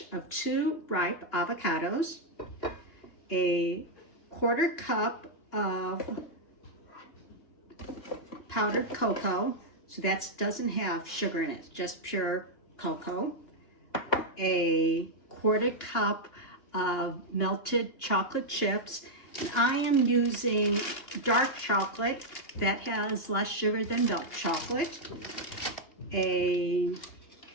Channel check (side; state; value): right; late; 2.9 ms